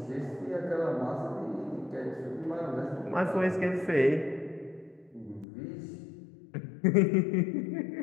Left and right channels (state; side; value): drops out; right; at 5.5 s